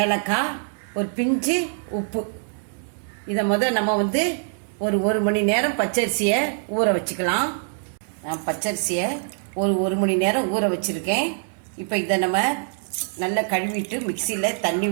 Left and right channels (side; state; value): left; silent; 63 dB below the other